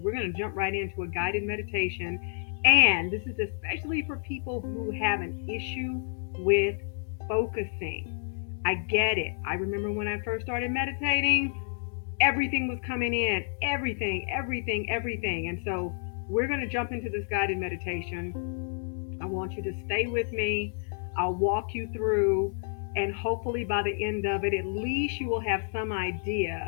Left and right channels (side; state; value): right; silent; 58 dB below the other